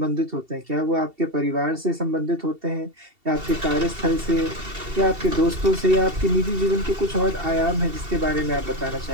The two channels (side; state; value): left; late; 2.7 ms